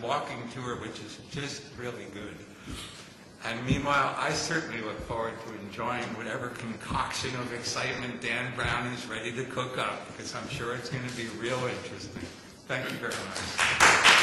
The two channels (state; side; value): identical; both; correlation 1.00